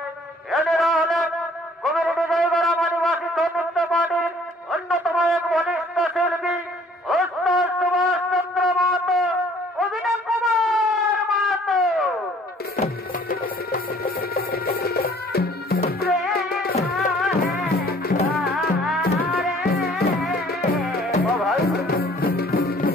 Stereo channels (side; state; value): both; normal; correlation 0.56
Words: এনারা হলেন কমিউনিটি জয়গড়া আদিবাসী সৌনৃত্য পার্টির অন্যতম এক বলিষ্ঠ শিল্পী ওস্তাদ সুভাষ চন্দ্র মাহাতো, অভিনয় কুমার মাহাতো।